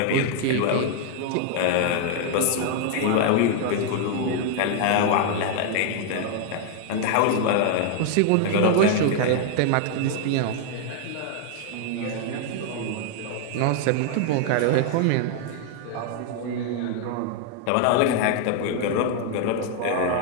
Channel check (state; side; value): different; both; correlation 0.00